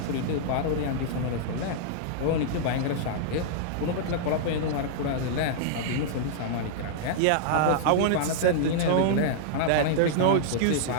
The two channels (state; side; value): different; both; correlation -0.02